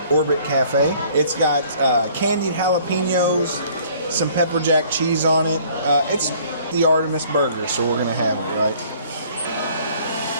Orbit Cafe. It's got candied jalapenos, some pepper jack cheese on it. It's the Artemis burger, so we're going to have it, right?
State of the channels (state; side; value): inverted; both; correlation -0.56